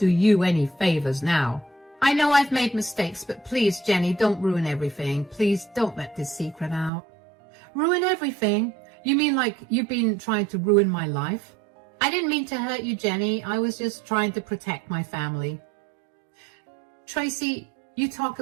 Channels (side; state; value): left; drops out; at 6.9 s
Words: you any favors now? I know I've made mistakes, but please, Jenny, don't ruin everything. Please don't let this secret out. Ruin everything? You mean like you've been trying to ruin my life? I didn't mean to hurt you, Jenny. I was just trying to protect my family. Tracy, you talk